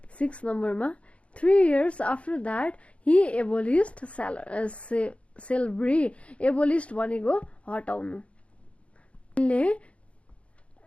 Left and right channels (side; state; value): right; late; 0.062 ms